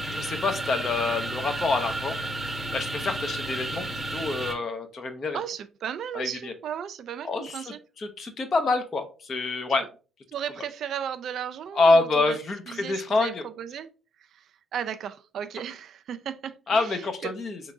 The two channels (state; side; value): normal; both; correlation 0.79